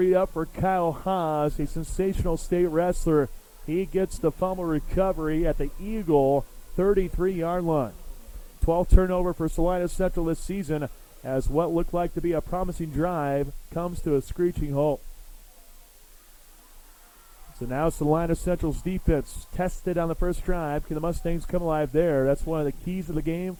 up for Kyle Haas, a sensational state wrestler. He gets the fumble recovery at the Eagle 33-yard line. 12th turnover for Salina Central this season, as what looked like to be a promising drive comes to a screeching halt. So now Salina Central's defense tested on the first drive. Can the Mustangs come alive there? That's one of the keys of the game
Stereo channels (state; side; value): identical; both; correlation 1.00